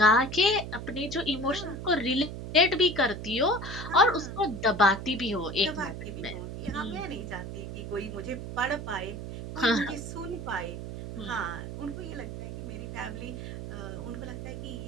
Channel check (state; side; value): noise; right; hum, 8 dB below the sound